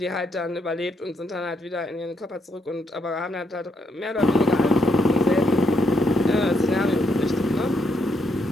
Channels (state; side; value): normal; both; correlation 0.77